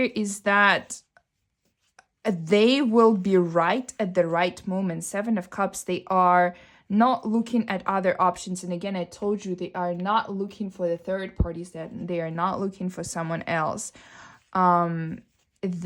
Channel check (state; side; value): identical; both; correlation 1.00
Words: is that they will be right at the right moment. Seven of Cups, they are not looking at other options. And again, I told you, they are not looking for the third parties, that they are not looking for someone else.